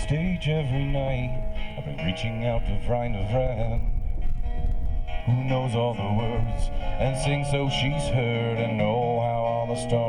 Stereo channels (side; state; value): both; identical; correlation 1.00